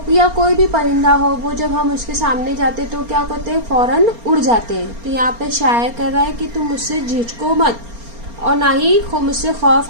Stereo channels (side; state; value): left; late; 4.3 ms